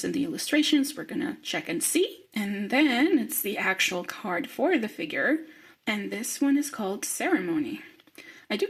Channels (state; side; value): identical; both; correlation 1.00